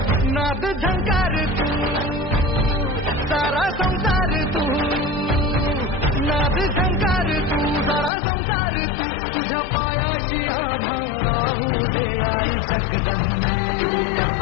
नाद झंकार तू सारा संसार तू नाद झंकार तू सारा संसार तू तुझ्या पायाशी आम्हा राहू दे आई जगदंबे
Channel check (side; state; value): right; drops out; at 8.1 s